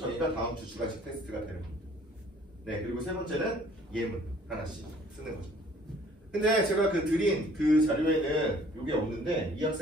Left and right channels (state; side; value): normal; both; correlation 0.56